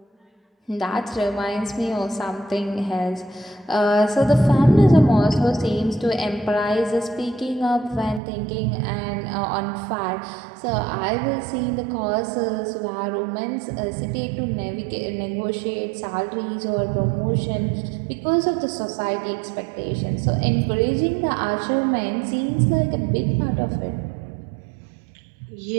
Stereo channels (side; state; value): left; drops out; at 8.2 s